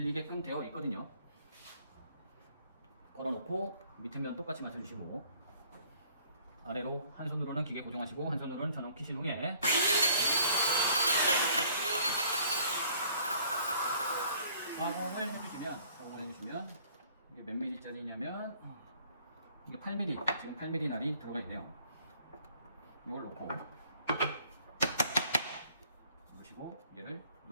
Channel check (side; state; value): both; inverted; correlation -0.58